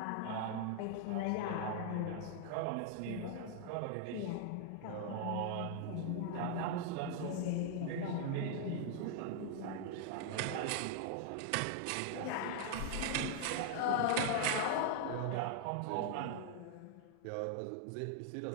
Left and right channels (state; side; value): different; both; correlation 0.00